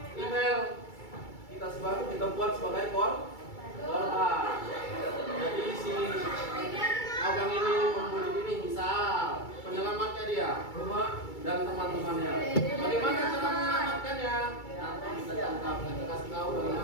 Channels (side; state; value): right; late; 2.3 ms